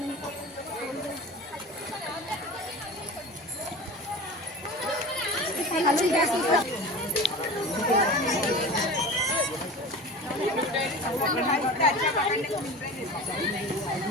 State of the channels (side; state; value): both; normal; correlation 0.34